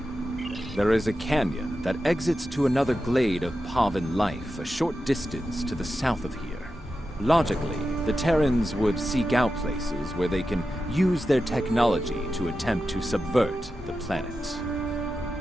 There is a canyon that exits to another glade of Pavan life a short distance to the south of here. Logically, the Terrans would seek out places where they can use their technology to attempt to subvert the planet.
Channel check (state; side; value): normal; both; correlation 0.91